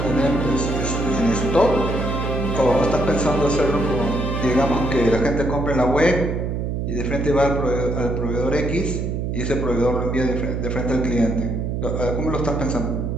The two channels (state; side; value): noise; right; hum, 2 dB below the sound